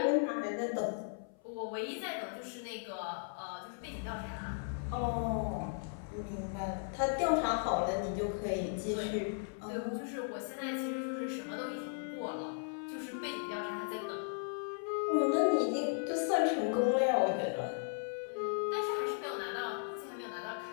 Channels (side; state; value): right; silent; 53 dB below the other